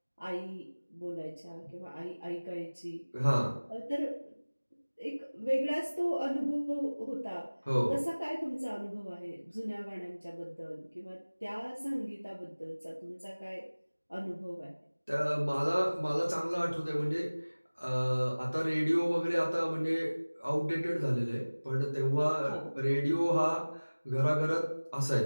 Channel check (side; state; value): both; inverted; correlation -1.00